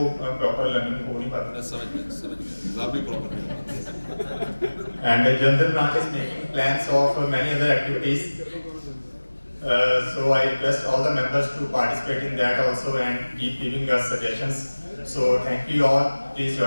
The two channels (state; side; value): inverted; both; correlation -1.00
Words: proper learning हो नहीं पाता. समझ गया एग्जाम भी प्रॉपर नहीं. And the general branch is making plans of many other activities. So I request all the members to participate in that also and keep giving us suggestions. So thank you all. Please